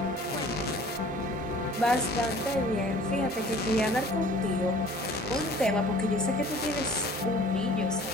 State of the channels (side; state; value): both; normal; correlation 0.49